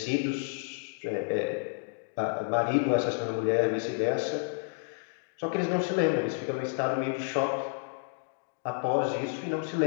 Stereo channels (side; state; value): right; silent; digital silence